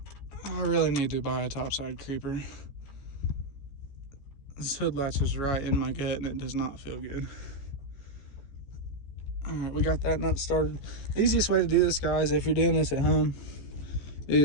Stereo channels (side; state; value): right; late; 14 ms